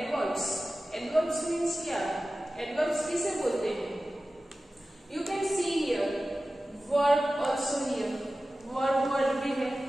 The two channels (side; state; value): both; normal; correlation 0.95